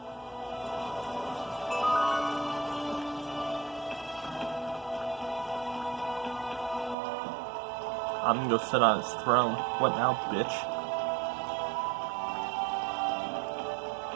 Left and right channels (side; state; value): left; drops out; at 7.0 s